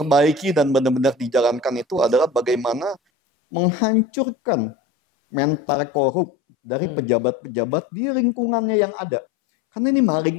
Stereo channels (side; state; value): right; drops out; at 3.0 s